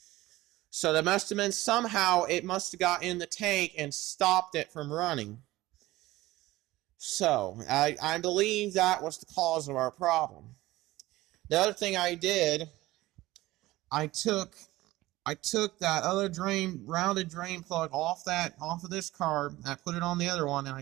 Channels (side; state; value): left; quieter; 17.8 dB